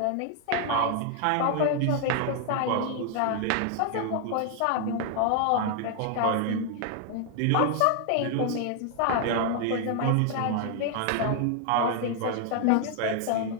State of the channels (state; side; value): different; both; correlation 0.00